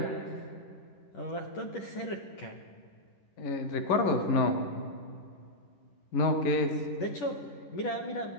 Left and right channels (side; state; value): right; late; 10 ms